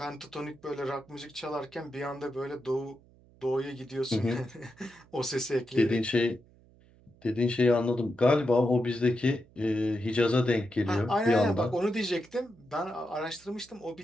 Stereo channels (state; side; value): noise; right; hum, 27 dB below the sound